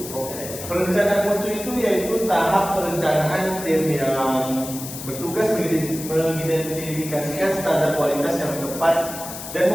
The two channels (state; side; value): noise; left; hiss, 10 dB below the sound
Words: Perencanaan mutu itu yaitu tahap perencanaan tim yang bertugas mengidentifikasikan standar kualitas yang tepat dan